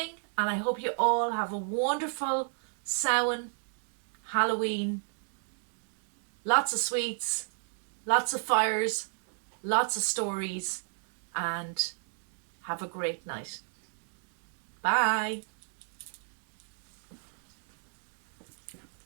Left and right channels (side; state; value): left; silent; digital silence